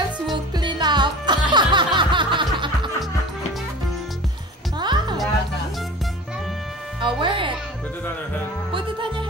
will clean up. Wear it. Put it on her head. Put it on your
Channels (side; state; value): both; normal; correlation 0.38